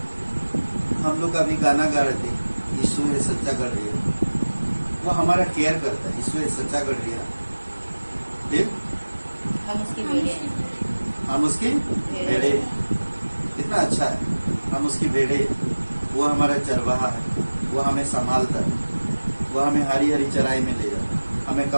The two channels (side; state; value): both; inverted; correlation -1.00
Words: हम लोग अभी गाना गा रहे थे, यीशु है सच्चा गढ़िया। वो हमारा केयर करता है। यीशु है सच्चा गढ़िया, हम उसकी भेड़े हैं। हम उसकी भेड़े। कितना अच्छा है, हम उसकी भेड़े। वो हमारा चरवाहा है, वो हमें संभालता है, वो हमें हरी हरी चराई में ले जाता है, हमें